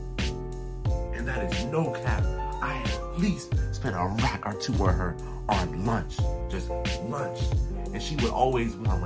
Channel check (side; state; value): both; identical; correlation 1.00